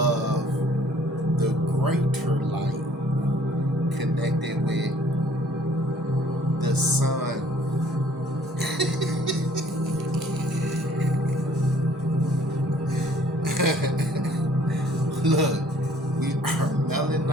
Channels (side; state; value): both; normal; correlation 0.58